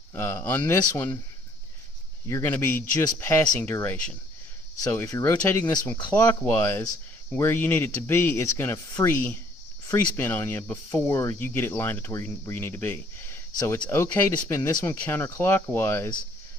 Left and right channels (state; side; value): normal; both; correlation 0.61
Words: On this one, you're going to be just passing duration. So if you're rotating this one clockwise, where you need it to be, it's going to free spin on you before you get it lined up to where you need to be. So it's okay to spin this one counterclockwise.